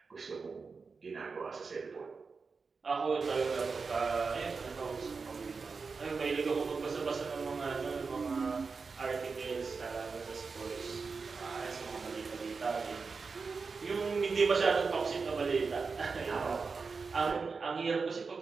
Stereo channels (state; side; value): quieter; left; 4.8 dB